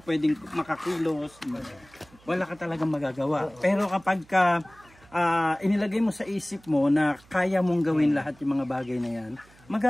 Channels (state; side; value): noise; right; hum, 27 dB below the sound